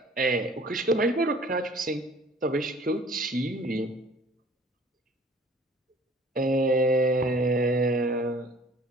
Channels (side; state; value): both; normal; correlation 0.52